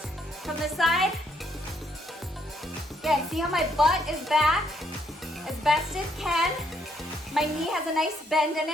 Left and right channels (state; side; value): normal; both; correlation 0.71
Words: From the side. Again, see how my butt is back as best it can. My knee has a nice bend in